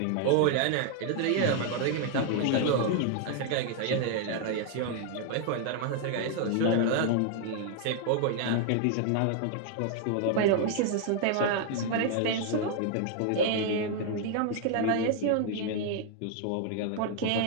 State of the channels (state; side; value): different; both; correlation 0.00